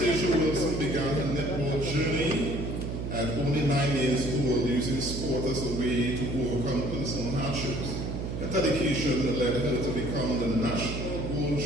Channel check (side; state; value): right; noise; hum, 4 dB below the sound